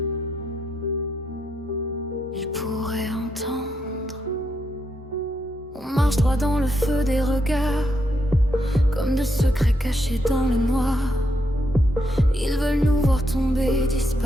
il pourrait entendre. On marche droit dans le feu des regards, comme de secrets cachés dans le noir. Ils veulent nous voir tomber,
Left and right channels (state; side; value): normal; both; correlation 0.79